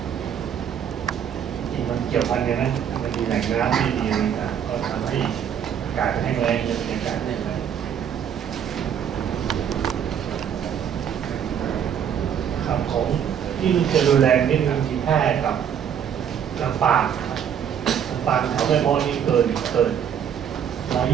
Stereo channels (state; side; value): quieter; left; 8.6 dB